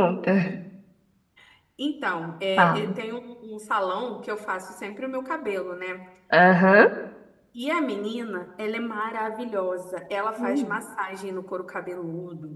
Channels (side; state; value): both; identical; correlation 1.00